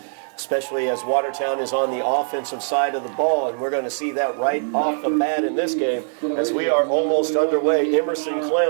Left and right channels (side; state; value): left; silent; digital silence